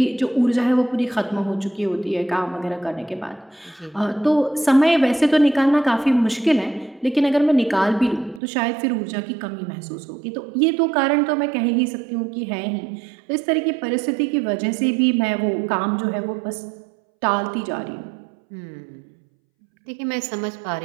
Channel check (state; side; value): drops out; left; at 8.4 s